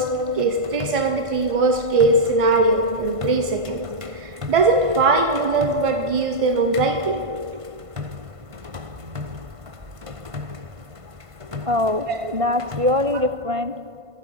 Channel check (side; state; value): left; late; 1.5 ms